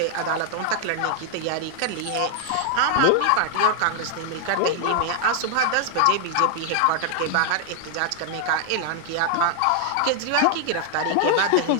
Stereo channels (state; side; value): different; both; correlation 0.00